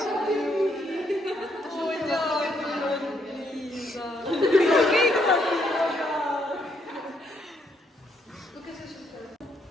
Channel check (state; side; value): normal; both; correlation 0.73